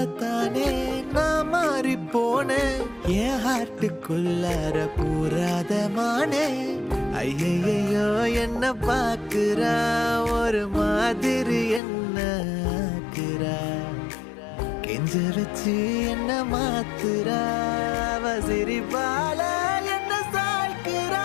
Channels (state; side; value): drops out; right; at 11.8 s